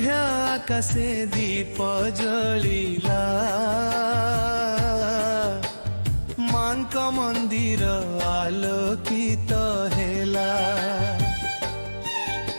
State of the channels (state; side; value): inverted; both; correlation -1.00